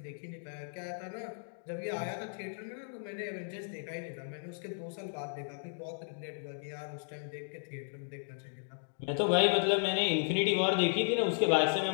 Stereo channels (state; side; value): silent; right; digital silence